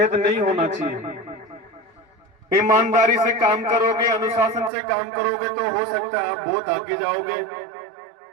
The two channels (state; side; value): drops out; left; at 4.7 s